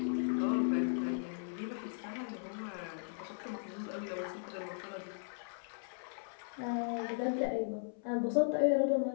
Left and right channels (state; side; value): silent; right; 53 dB below the other